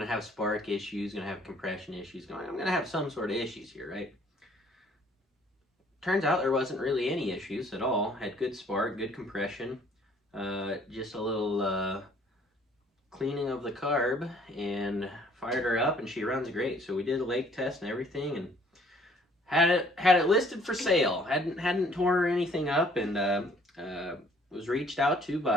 have spark issues, gonna have compression issues, I'm gonna have some sort of issues here, right? Turns out there wasn't really any issues at all. Had good spark, good compression, just a little cleaning of the carb, and fired her up, and she runs great. So we did a lake test and everything, and had it listed for sale. Hadn't tore anything up, and was reached out to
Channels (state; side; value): normal; both; correlation 0.59